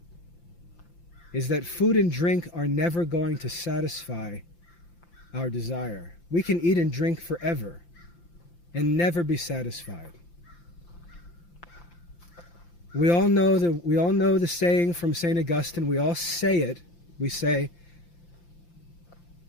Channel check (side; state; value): right; late; 5.8 ms